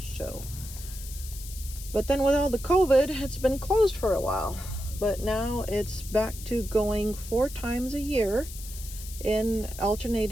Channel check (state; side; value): noise; left; hiss, 13 dB below the sound